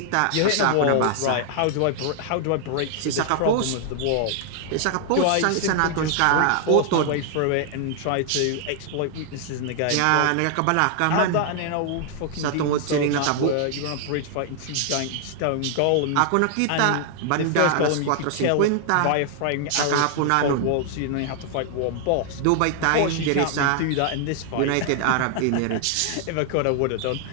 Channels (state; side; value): different; both; correlation 0.00